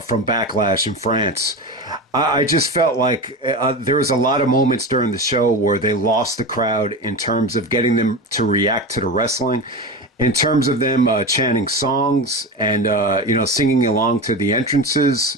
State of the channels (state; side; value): normal; both; correlation 0.24